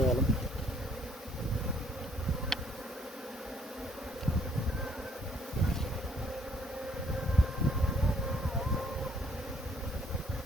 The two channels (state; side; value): normal; both; correlation 0.64